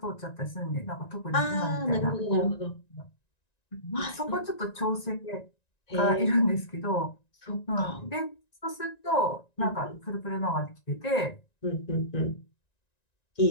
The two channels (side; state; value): right; late; 1.9 ms